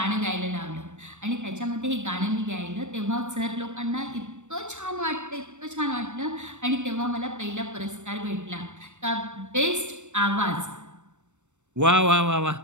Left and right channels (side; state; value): left; late; 0.84 ms